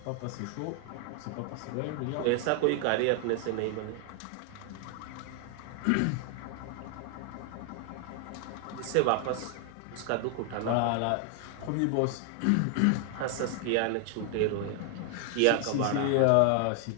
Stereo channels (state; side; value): different; both; correlation 0.00